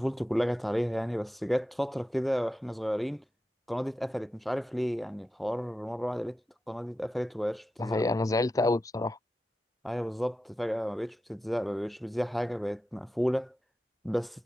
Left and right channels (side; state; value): both; normal; correlation 0.91